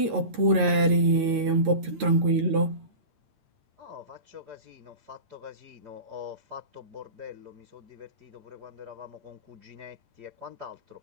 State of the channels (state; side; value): late; left; 8.8 ms